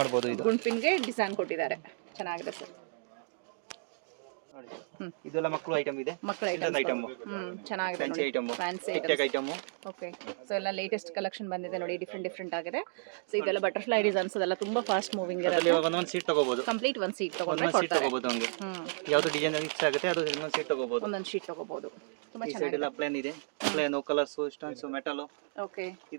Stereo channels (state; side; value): silent; left; digital silence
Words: ಮಾಡಬಹುದು. ಇದು ಗುಂಡ್ ಪಿನ್ ಗೆ ಡಿಸೈನ್ ಕೊಟ್ಟಿದ್ದಾರೆ, ಚೆನ್ನಾಗಿದೆ ಸರ್. ಇದೆಲ್ಲ ಮಕ್ಕಳು ಐಟಮ್ ಇದೆ. ಮಕ್ಕಳ ಐಟಮ್ ಚೆನ್ನಾಗಿದೆ ನೋಡಿ, ಫ್ಯಾನ್ಸಿ ಐಟಮ್. ಓಕೆ. ಸೊ ಎಲ್ಲ ಲೇಟೆಸ್ಟ್ ಕಲೆಕ್ಷನ್ ಬಂದಿದೆ ನೋಡಿ, ಡಿಫ್ರೆಂಟ್ ಆಗಿದೆ. ಸೊ ಇದೆಲ್ಲ ಬಟರ್ಫ್ಲೈ ಡಿಸೈನ್ಸ್ ಅದೆಲ್ಲ ತುಂಬಾ ಫಾಸ್ಟ್ ಮೂವಿಂಗ್ ಇರುತ್ತೆ. ಒಂದೊಂದು ಸೀಟ್ ತಗೋಬಹುದು. ಕಂಪ್ಲೀಟ್ ಒಂದು ಸೀಟ್ ತಗೊಂಡ್ರೆ ಕೊಡ್ತಾರೆ. ಯಾವುದು ಡಿಸೈನ್ ಇಷ್ಟ ಆಗುತ್ತೆ ಅದು ಒಂದೊಂದು ಸೀಟ್ ತಗೋಬಹುದು. ಒಂದೊಂದು ಶೀಟ್ ತಗೋಬಹುದು. ತುಂಬಾ ಚೆನ್ನಾಗಿದೆ. ಇದೆಲ್ಲ ಪ್ಲೇನ್ ಇದೆ. Plain colours, stones, metal. Okay.